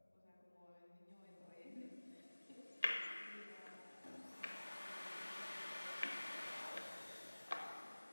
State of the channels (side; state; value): both; inverted; correlation -1.00